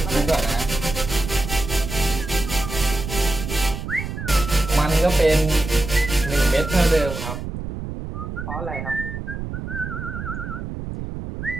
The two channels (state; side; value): noise; right; rumble, 7 dB below the sound